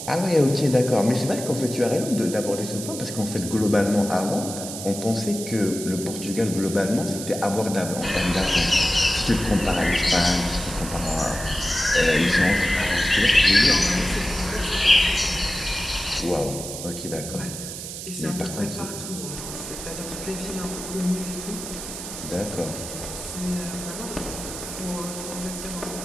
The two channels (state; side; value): noise; right; hiss, 8 dB below the sound